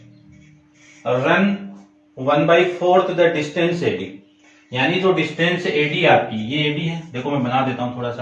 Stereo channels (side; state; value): both; identical; correlation 1.00